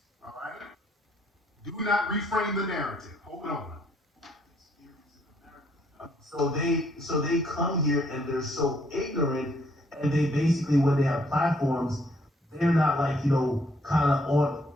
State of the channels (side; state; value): both; normal; correlation 0.68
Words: All right? Do not reframe the narrative. Hold on. So they come here and they're so ignorant, and they basically, when they have platforms, they're not like, kind of on,